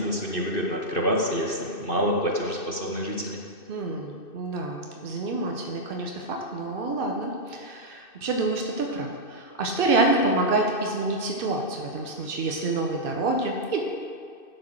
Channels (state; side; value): late; right; 2.6 ms